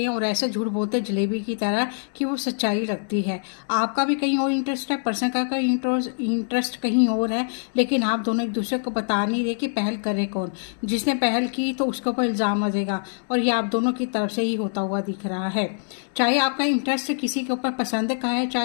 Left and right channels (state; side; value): silent; right; digital silence